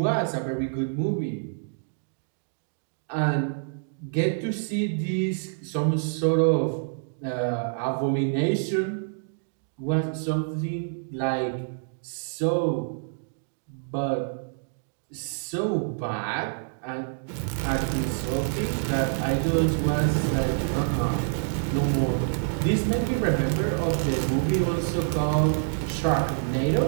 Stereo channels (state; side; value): silent; left; digital silence